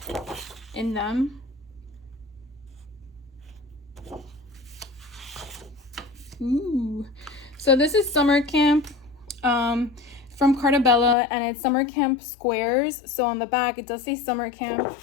in them. Ooh. So this is Summer Camp from Carta Bella, and it's Summer Camp squares. So on the back it does say Summer Camp,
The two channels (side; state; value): right; drops out; at 11.2 s